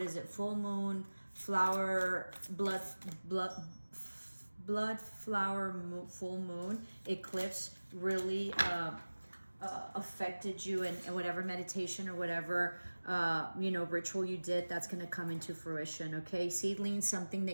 is it, full moon, flower, blood flower, full moon, eclipse really affected you, and whatever meditation or whatever you know, ritual you did, that's going to come into fruition. Okay, seedling, something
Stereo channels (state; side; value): inverted; both; correlation -1.00